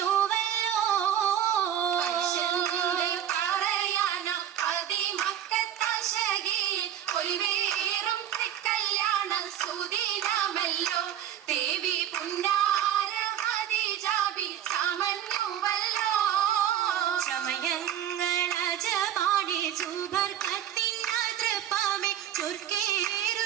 പറയാന അതിമക്കത്താശകിയിൽ കൊയ്വേറും കല്യാണ സുദിനമല്ലോ. ദേവി പുന്നാര ഖദീജാബി ചമഞ്ഞുവല്ലോ. സമയങ്ങളജമാണി സുബർക്കത്തിൻ തൃപ്പമേ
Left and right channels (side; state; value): left; quieter; 10.6 dB